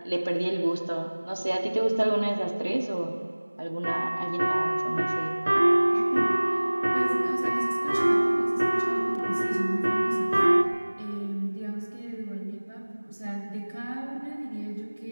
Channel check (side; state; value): both; inverted; correlation -1.00